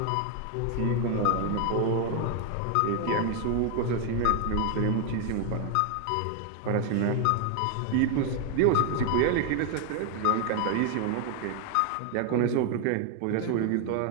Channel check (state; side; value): different; both; correlation 0.00